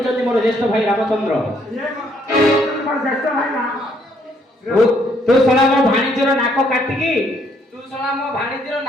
ମୋର ଜ୍ୟେଷ୍ଠ ଭାଇ ରାମଚନ୍ଦ୍ର। ତୁ ଶଳା ମୋ ଭାଣିଜର ନାକ କାଟିକି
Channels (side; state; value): both; normal; correlation 0.68